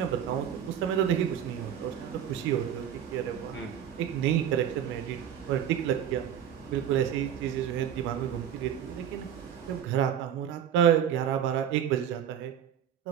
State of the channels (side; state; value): left; quieter; 9.4 dB